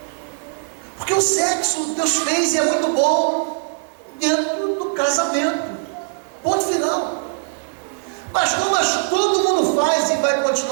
Porque o sexo Deus fez e é muito bom dentro do casamento. Ponto final. Mas todo mundo faz e vai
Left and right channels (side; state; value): left; silent; digital silence